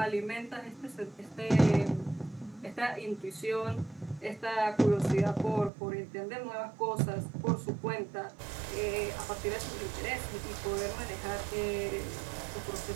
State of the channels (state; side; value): drops out; left; at 5.7 s